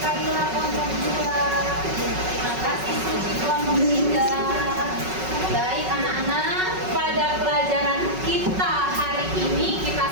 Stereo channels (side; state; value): left; late; 5.4 ms